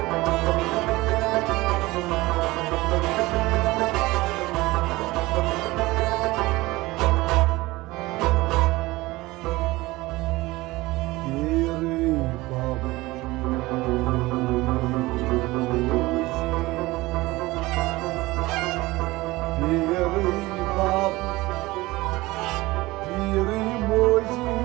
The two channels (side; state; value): left; quieter; 20.1 dB